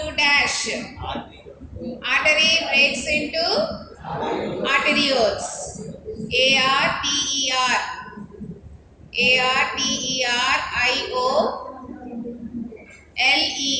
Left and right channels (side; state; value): both; identical; correlation 1.00